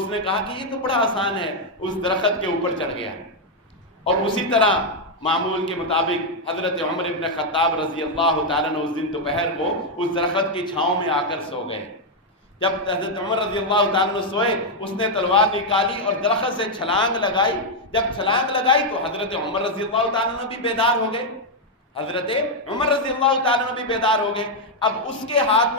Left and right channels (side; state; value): both; normal; correlation 0.00